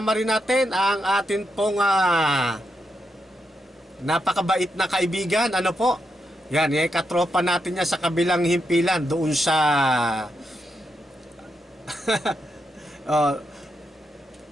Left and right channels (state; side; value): normal; both; correlation 0.83